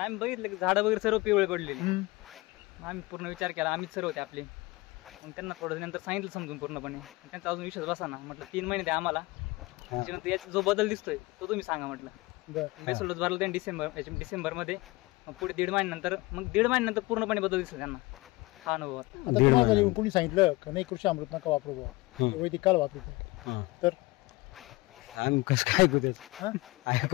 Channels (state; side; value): quieter; right; 22.1 dB